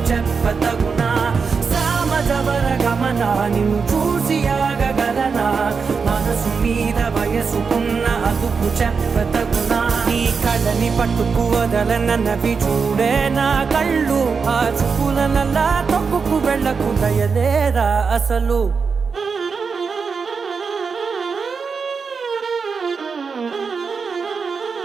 చెప్పతగునా సామజవర గమన నిన్ను చూసి ఆగగలనా మనసు మీద వయసుకున్న అదుపు చెప్పతగునా నీ కళ్ళని పట్టుకు వదలనన్నవి చూడే నా కళ్ళు ఆ చూపులనల్లా తొక్కుకు వెళ్ళకు దయలేరా అసలు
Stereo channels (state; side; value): quieter; left; 5.3 dB